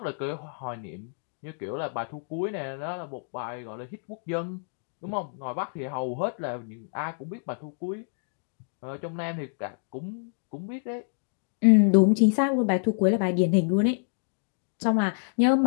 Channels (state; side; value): silent; right; digital silence